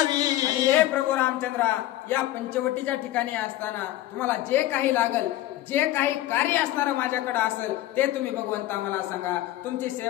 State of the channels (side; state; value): right; quieter; 15.0 dB